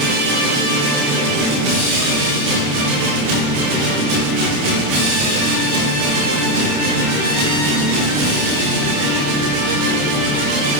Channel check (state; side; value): late; left; 28 ms